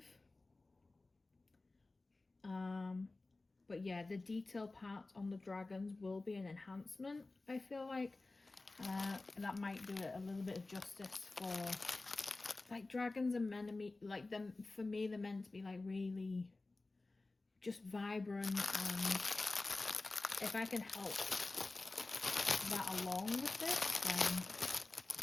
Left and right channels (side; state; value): right; quieter; 3.2 dB